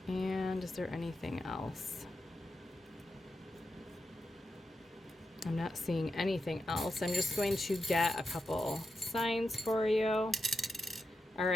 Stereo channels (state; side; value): normal; both; correlation 0.88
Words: And is there anything else? I'm not seeing anything else. I'm just going to get a couple signs for you. All